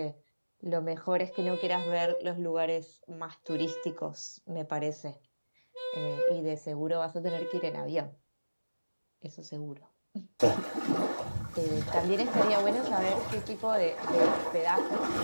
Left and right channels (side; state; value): both; inverted; correlation -1.00